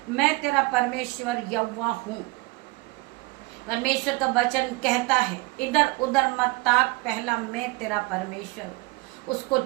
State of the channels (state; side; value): quieter; left; 23.6 dB